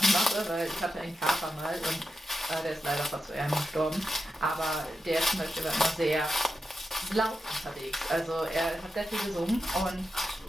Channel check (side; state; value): both; normal; correlation 0.89